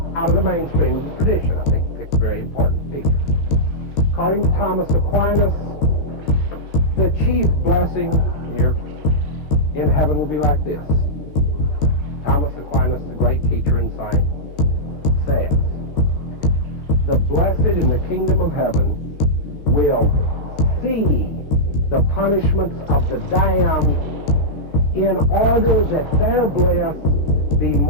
out of the mainstream of the tradition. I think he picked a very important figure. According to Thomas Aquinas, the chief blessing here in heaven will be like this. Thomas Aquinas, the great teacher and saint, says, "The blessed in the kingdom of heaven will see the punishments of the damned in order that their bliss be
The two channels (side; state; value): right; late; 14 ms